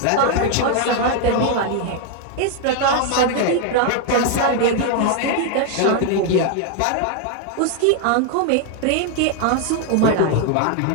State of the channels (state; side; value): different; both; correlation 0.00